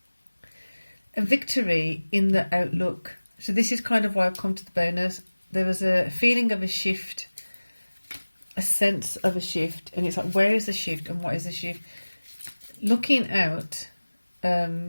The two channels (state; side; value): inverted; both; correlation -1.00